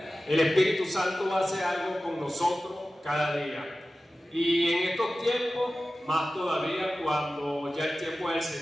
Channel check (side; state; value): both; normal; correlation 0.95